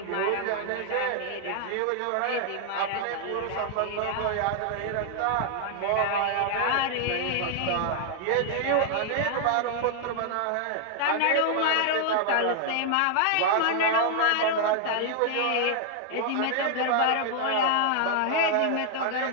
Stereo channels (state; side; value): different; both; correlation 0.00